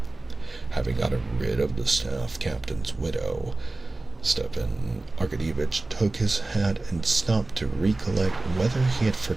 Having gotten rid of the staff captain's widow, Stepan Arkadyevitch took his hat and stopped to recollect whether he had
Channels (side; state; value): left; quieter; 3.0 dB